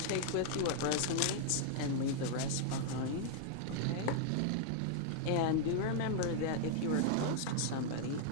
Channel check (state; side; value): different; both; correlation -0.01